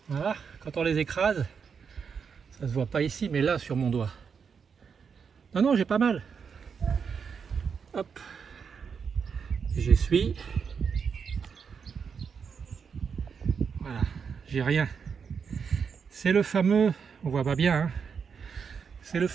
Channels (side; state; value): left; quieter; 6.3 dB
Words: Voilà, quand on les écrase, ça se voit pas ici, mais là sur mon doigt. Non, non, j'ai pas mal. Hop, j'essuie. Voilà, j'ai rien. C'est le fameux, on voit pas bien, hein, c'est le